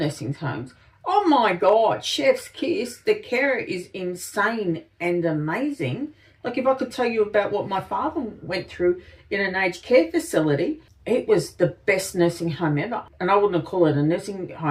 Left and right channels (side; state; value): both; identical; correlation 1.00